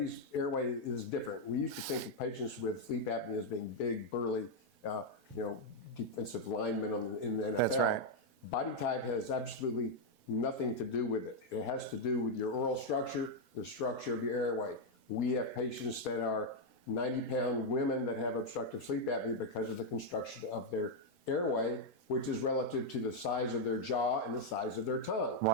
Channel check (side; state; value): both; normal; correlation -0.01